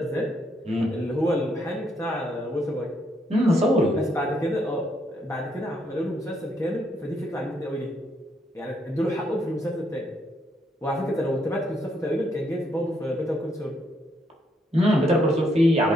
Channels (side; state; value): both; normal; correlation 0.74